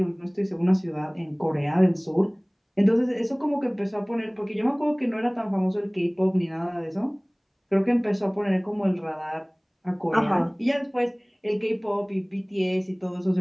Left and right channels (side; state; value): both; identical; correlation 1.00